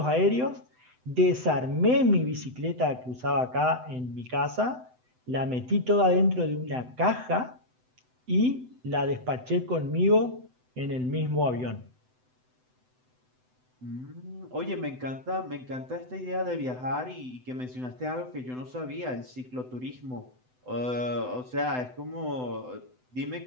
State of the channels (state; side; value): late; left; 7.9 ms